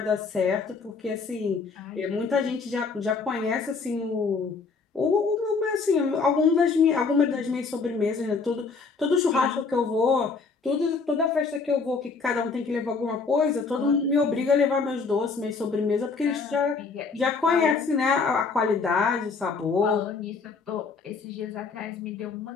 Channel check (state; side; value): quieter; right; 4.7 dB